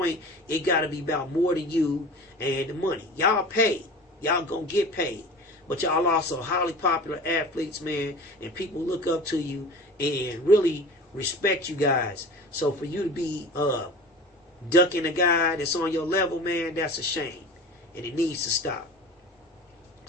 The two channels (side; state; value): both; normal; correlation 0.37